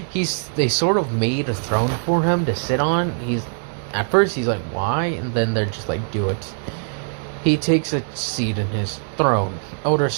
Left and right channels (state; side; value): silent; left; 64 dB below the other